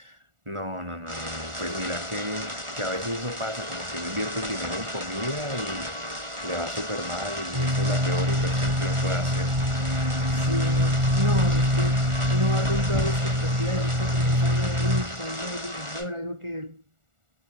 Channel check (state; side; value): late; left; 1.4 ms